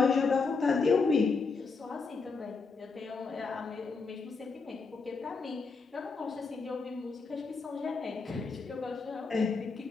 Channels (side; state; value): right; quieter; 4.5 dB